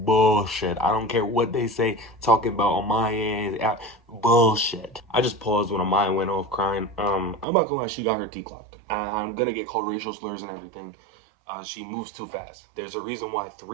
I don't care what they say, talking about on my end, bullshit. I just paused when Amaya went off crying. I'm not gonna lie, she got her T clocked. I'm gonna get called racial slurs and everything. She moves too fast. There's a reason why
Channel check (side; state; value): left; drops out; at 7.5 s